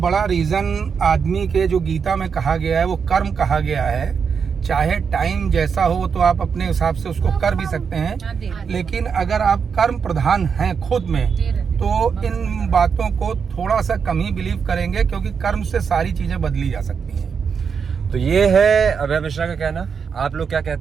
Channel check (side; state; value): left; quieter; 6.3 dB